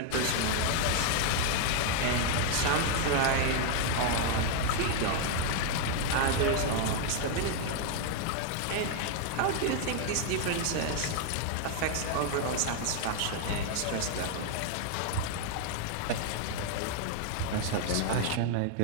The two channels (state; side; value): different; both; correlation 0.00